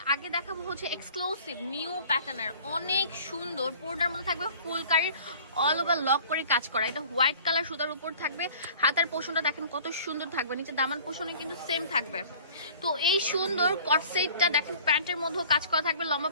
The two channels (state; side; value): inverted; both; correlation -0.47